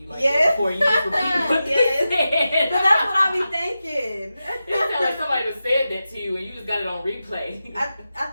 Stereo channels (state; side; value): inverted; both; correlation -0.92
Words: like Yes. that before you just repeat what Yes. they said. But that's what I be thinking. It sounds like somebody done said that to you and you just got it on replay. I